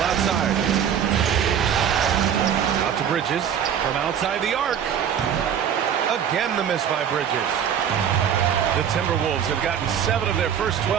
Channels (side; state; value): left; quieter; 8.6 dB